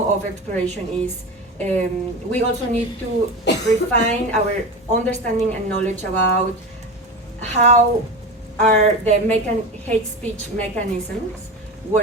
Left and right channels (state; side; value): normal; both; correlation 0.26